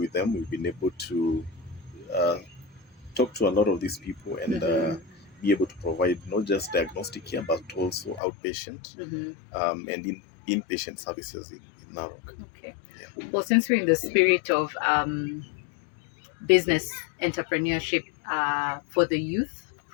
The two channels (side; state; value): right; drops out; at 8.2 s